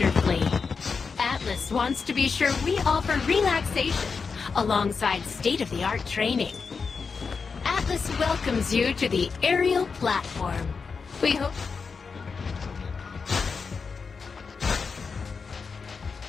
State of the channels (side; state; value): right; quieter; 5.2 dB